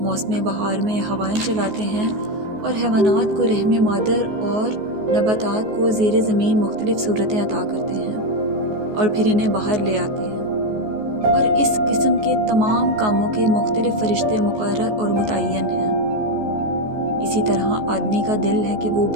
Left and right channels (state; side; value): late; left; 14 ms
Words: موسم بہار میں ہوائیں چلاتے ہیں اور حیوانات کو رحم مادر اور نباتات کو زیر زمین مختلف صورتیں عطا کرتے ہیں اور پھر انہیں باہر لے آتے ہیں، اور اس قسم کے تمام کاموں کے مختلف فرشتے مقرر اور متعین ہیں۔ اسی طرح آدمی کا دل ہے کہ وہ